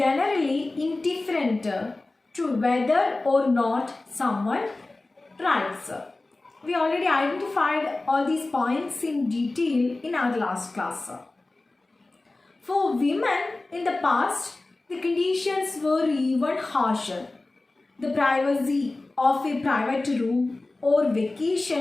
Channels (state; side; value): quieter; right; 3.1 dB